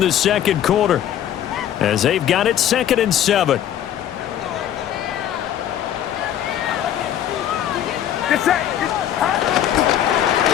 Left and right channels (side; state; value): right; quieter; 10.8 dB